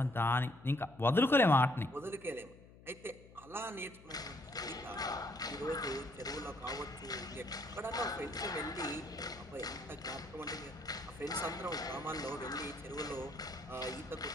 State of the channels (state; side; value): noise; left; hum, 21 dB below the sound